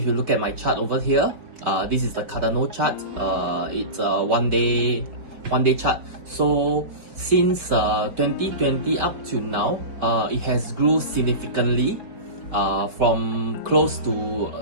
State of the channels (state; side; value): late; left; 4.5 ms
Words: you look at my chart over here, this is the Cardano chart. It's a one day chart. So since 2020 up to now, it has grew significantly from close to